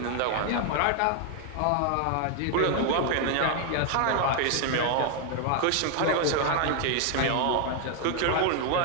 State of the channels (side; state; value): both; different; correlation 0.00